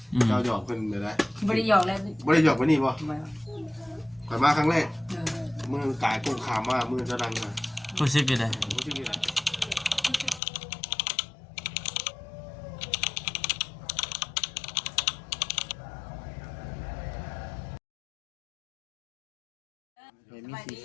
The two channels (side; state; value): right; drops out; at 10.4 s